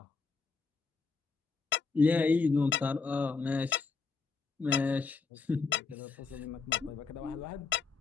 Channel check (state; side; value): quieter; right; 4.7 dB